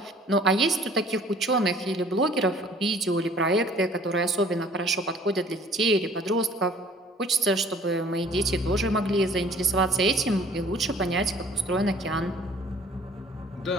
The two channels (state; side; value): normal; both; correlation 0.53